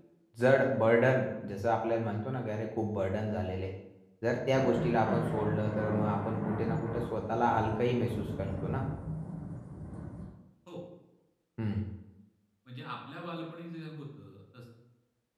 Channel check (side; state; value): both; identical; correlation 1.00